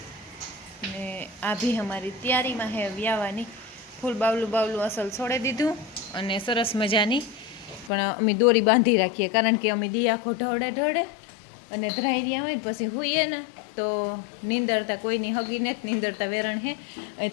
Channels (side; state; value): right; drops out; at 7.9 s